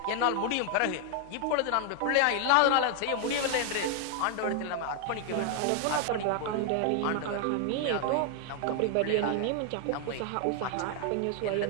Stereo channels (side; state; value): both; different; correlation 0.00